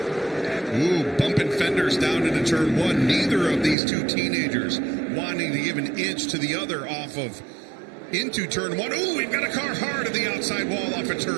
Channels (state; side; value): drops out; left; at 3.8 s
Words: Ooh, bumping fenders down into turn 1. Neither of these 2 teenagers wanting to give an inch to the other off of into turn 1. Ooh, we've got a car hard at the outside wall off of